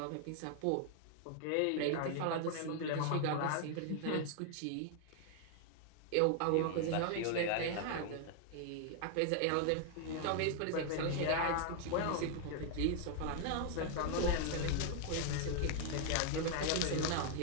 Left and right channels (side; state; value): both; different; correlation 0.00